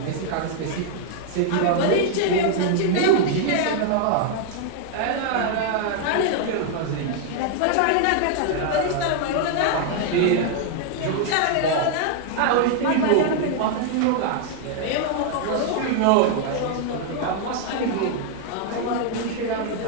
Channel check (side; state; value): both; different; correlation 0.00